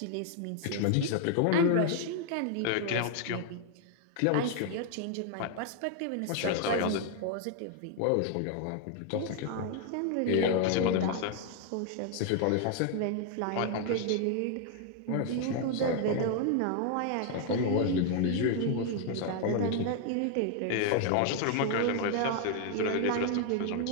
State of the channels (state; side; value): different; both; correlation 0.00